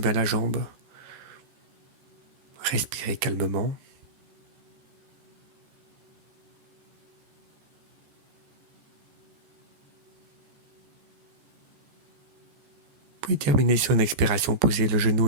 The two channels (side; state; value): left; late; 14 ms